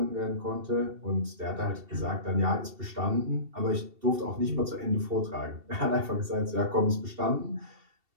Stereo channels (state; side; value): late; left; 2.7 ms